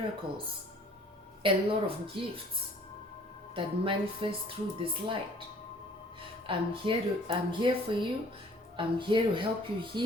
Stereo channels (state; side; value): normal; both; correlation 0.54